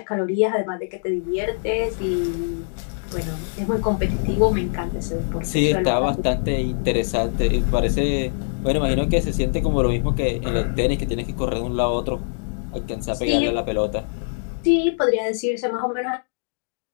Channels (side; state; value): right; silent; digital silence